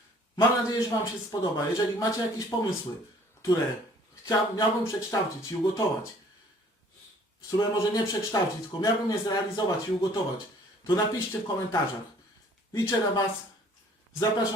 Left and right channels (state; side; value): normal; both; correlation 0.55